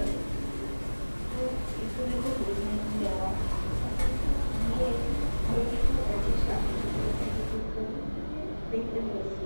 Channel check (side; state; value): both; inverted; correlation -1.00